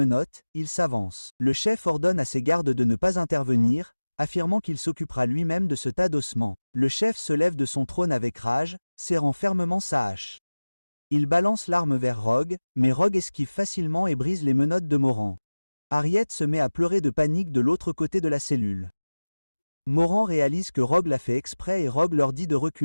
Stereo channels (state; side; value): inverted; both; correlation -1.00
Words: il s'avance. Le chef ordonne à ses gardes de ne pas intervenir, affirmant qu'il s'occupera lui-même de ce tas d'ossements. Le chef se lève de son trône avec rage, serrant fermement sa hache. Il balance l'arme vers Rogue, mais Rogue esquive facilement et brise les menottes de Moran. Harriet se met à pleurer de panique de l'autre côté de la cellule. Moran réalise que Rogue l'a fait exprès et Rogue leur dit de